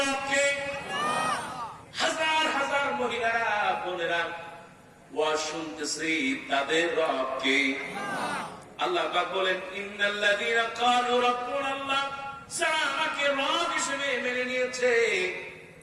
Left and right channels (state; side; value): identical; both; correlation 1.00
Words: রব কে? হাজার হাজার মহিলারা বোনেরা ওয়াজ শুনতেছে, তাদের রব কে? আল্লাহ পাক বলেন ইন্নাল্লাযীনা ক্বালু রাব্বুনাল্লাহ, যারা আমাকে রব হিসেবে মেনে নিয়েছে,